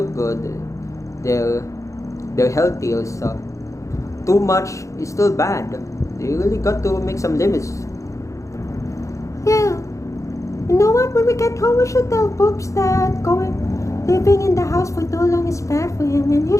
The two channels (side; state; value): right; late; 0.15 ms